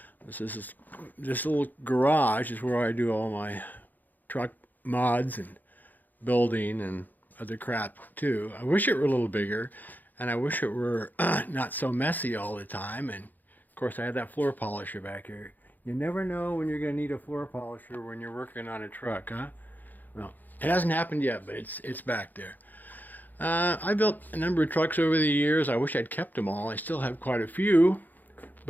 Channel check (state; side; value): late; right; 0.085 ms